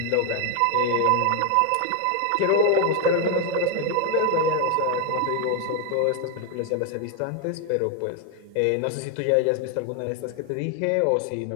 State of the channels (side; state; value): both; different; correlation 0.01